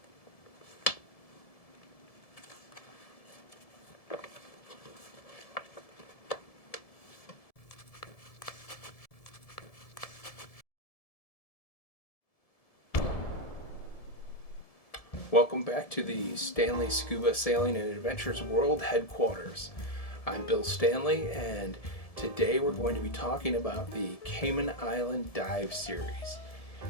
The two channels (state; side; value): late; right; 1.7 ms